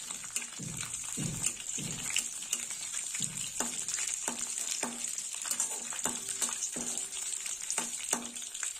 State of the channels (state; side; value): normal; both; correlation 0.95